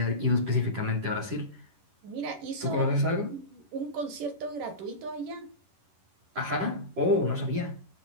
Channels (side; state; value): left; late; 11 ms